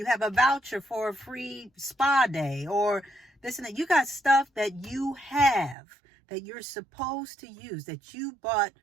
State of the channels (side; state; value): left; drops out; at 5.8 s